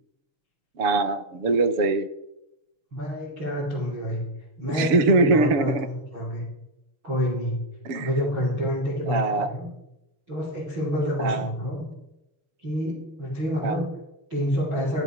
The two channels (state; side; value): late; left; 7.0 ms